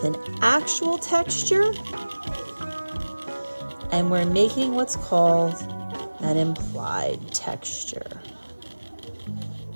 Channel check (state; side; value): inverted; both; correlation -1.00